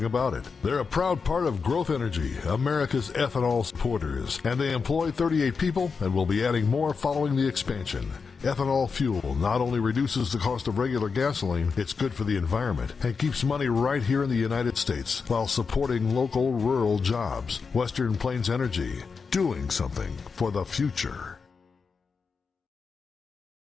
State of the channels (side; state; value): right; quieter; 5.2 dB